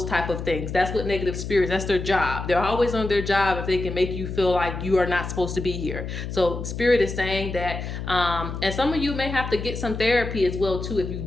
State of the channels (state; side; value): noise; left; hum, 6 dB below the sound